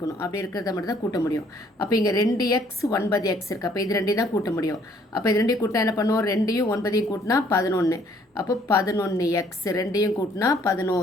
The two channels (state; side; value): normal; both; correlation 0.62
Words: அப்படி இருக்கிறத மட்டும் தான் கூட்ட முடியும். அப்போ இங்கே 2x 9x இருக்குது. அப்போ இது ரெண்டையும் தான் கூட்ட முடியும். அப்போ இது ரெண்டையும் கூட்டினா என்ன பண்ணுவோம், 2ஐயும் 9ஐயும் கூட்டினா 11. அப்போ 11x, ரெண்டையும் கூட்டினா